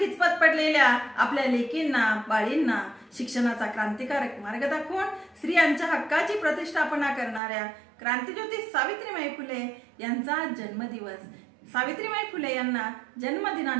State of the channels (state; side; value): drops out; left; at 7.4 s